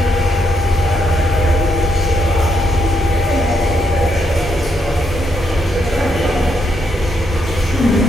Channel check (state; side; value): normal; both; correlation 0.78